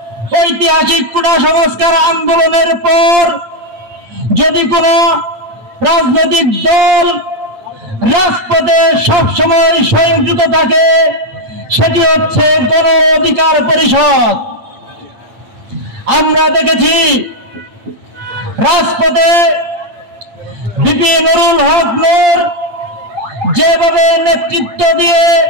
ঐতিহাসিক কোটা সংস্কার আন্দোলনের পর যদি কোনো রাজনৈতিক দল রাজপথে সবসময় সংযুক্ত থাকে সেটি হচ্ছে গণ অধিকার পরিষদ। আমরা দেখেছি রাজপথে বিপি নুরুল হক নূর যেভাবে নেতৃত্ব দিয়ে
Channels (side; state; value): left; late; 8.6 ms